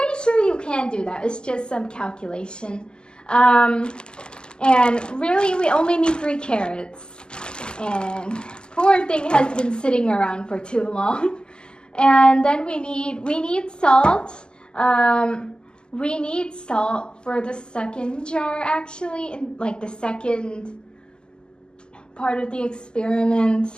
sure you can do that. It's just some calculation. And really, we only need 3 carrots. And poor thing has been sitting around for too long. And then we need salt. We need salt for the second jar, actually, in like the second part of the experiment,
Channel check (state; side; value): late; right; 0.047 ms